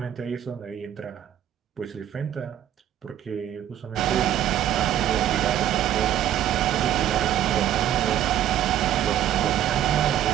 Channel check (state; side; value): quieter; left; 11.2 dB